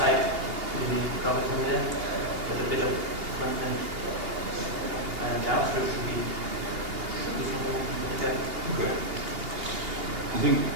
You drop it in there. But a bit of front-end JavaScript should be something like that. Okay.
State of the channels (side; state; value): left; late; 2.8 ms